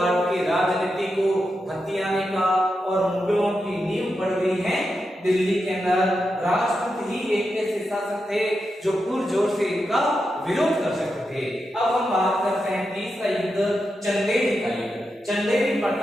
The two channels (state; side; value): normal; both; correlation 0.87